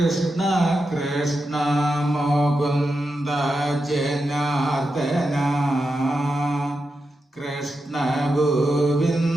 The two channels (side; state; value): both; normal; correlation 0.88